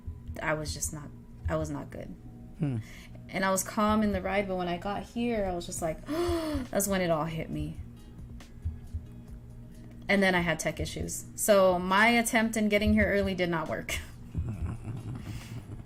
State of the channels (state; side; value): identical; both; correlation 1.00